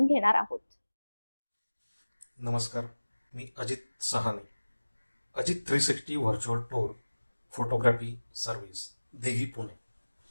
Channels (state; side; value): inverted; both; correlation -1.00